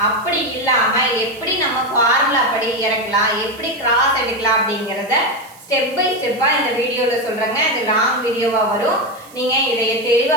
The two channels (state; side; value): noise; right; hiss, 23 dB below the sound